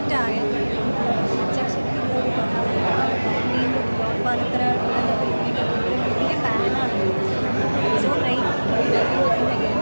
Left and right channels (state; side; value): inverted; both; correlation -1.00